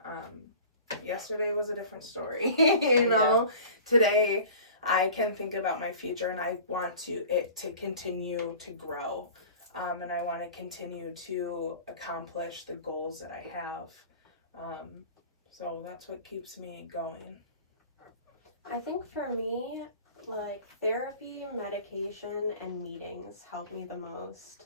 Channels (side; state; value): both; inverted; correlation -0.41